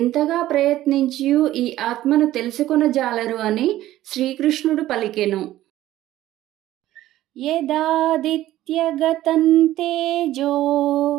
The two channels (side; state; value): left; quieter; 14.5 dB